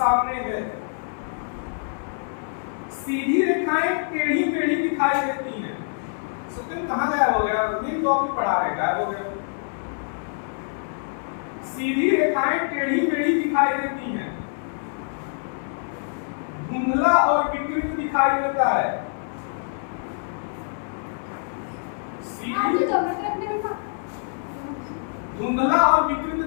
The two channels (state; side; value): silent; right; digital silence